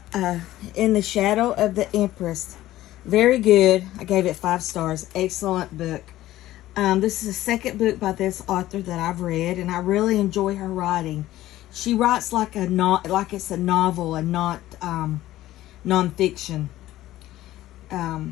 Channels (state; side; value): quieter; right; 15.1 dB